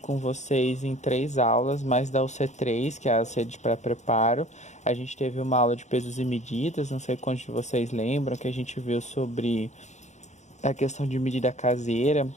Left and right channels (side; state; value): right; late; 0.34 ms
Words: vocês em 3 aulas, mais da UC3, que é a UC de pré-preparo. A gente teve uma aula de pesos e medidas, não sei quantos de vocês lembram, que a gente viu sobre a questão de medida caseira,